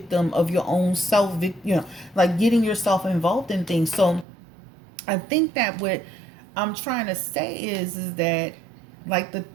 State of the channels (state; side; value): drops out; left; at 4.2 s